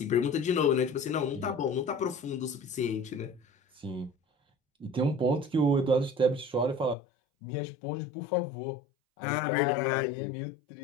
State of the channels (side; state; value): right; drops out; at 7.0 s